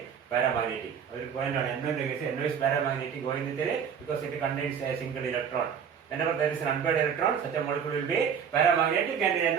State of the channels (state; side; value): quieter; left; 7.4 dB